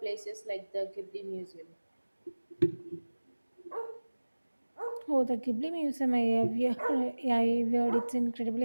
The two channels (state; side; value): inverted; both; correlation -1.00